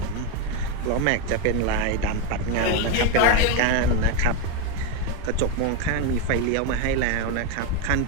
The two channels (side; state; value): both; different; correlation 0.03